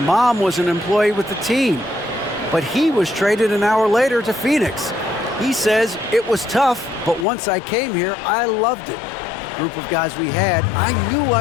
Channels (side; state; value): right; drops out; at 7.2 s